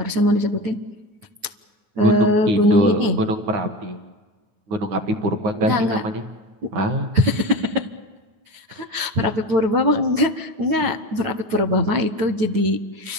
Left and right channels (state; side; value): late; left; 9.4 ms